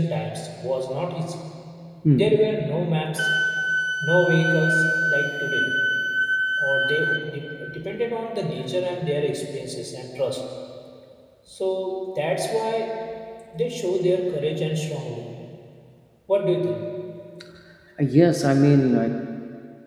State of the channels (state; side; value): identical; both; correlation 1.00